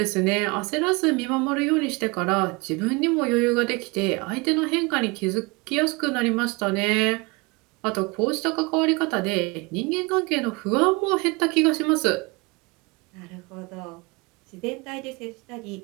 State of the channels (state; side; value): quieter; left; 26.7 dB